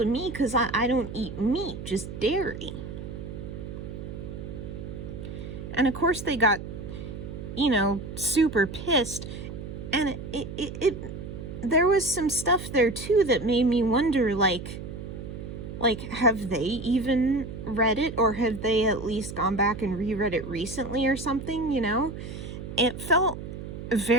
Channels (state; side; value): noise; right; hum, 9 dB below the sound